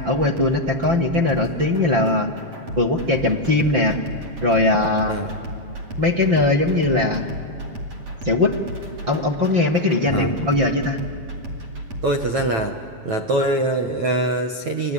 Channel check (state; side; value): late; left; 7.5 ms